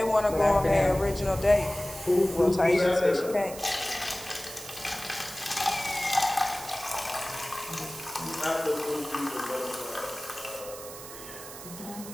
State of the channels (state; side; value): noise; right; hiss, 13 dB below the sound